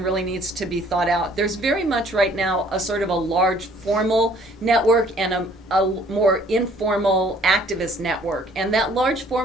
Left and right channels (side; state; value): both; normal; correlation 0.58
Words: really needs to be thought out. There's very much right now a sort of a large formal network and a more informal activist network. And that large